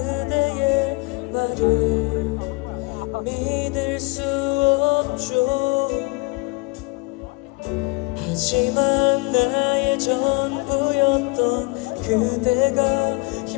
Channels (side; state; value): right; quieter; 26.6 dB